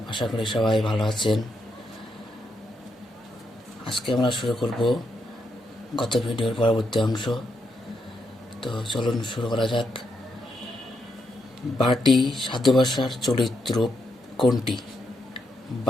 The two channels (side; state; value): both; normal; correlation 0.80